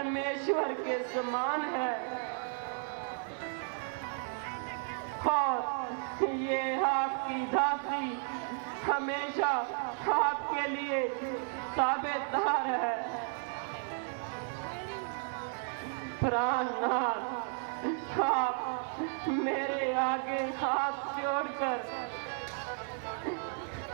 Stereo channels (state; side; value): silent; left; 55 dB below the other